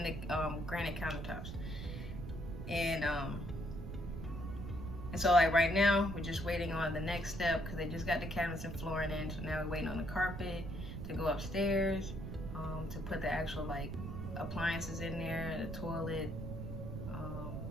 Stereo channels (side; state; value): right; noise; rumble, 7 dB below the sound